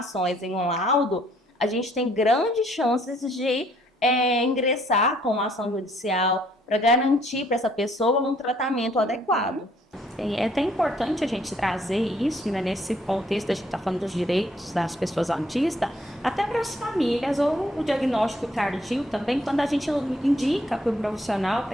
em um laudo, a gente tem grandes chances de ingressar com uma ação judicial para garantir para essa pessoa um tratamento adequado. É até importante a gente trazer isso, né, nesse contexto, a gente está falando dos direitos das pessoas autistas, até para as famílias, ou o diagnóstico tardio também, quando a gente indica para o profissional,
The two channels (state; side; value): normal; both; correlation 0.65